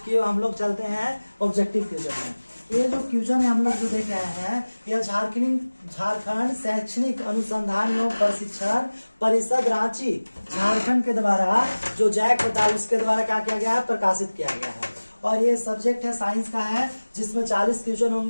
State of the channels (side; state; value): both; inverted; correlation -1.00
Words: किए हम लोग चलते हैं ऑब्जेक्टिव क्वेश्चन में। ये जो क्वेश्चन है हम लोग जो देख रहे हैं, यह झारखंड शैक्षणिक अनुसंधान एवं प्रशिक्षण परिषद रांची झारखंड के द्वारा जो जैक होता है उसके द्वारा क्या किया गया है, प्रकाशित किया गया है। और ये सब्जेक्ट है साइंस का है, जिसमें 40 क्वेश्चन